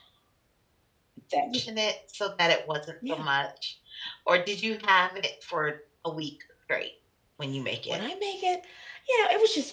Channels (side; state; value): both; identical; correlation 1.00